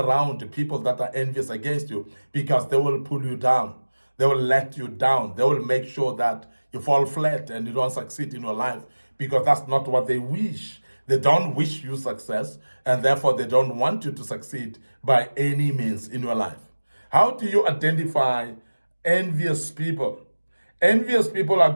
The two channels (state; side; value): inverted; both; correlation -1.00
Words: to people that are envious against you, because they will pull you down. They will let you down. They will make sure that you fall flat and you don't succeed in your life, because that's not what they wish. They don't wish you success, and therefore they don't want you to succeed by any means in your life. How do you identify envious people? Envious people are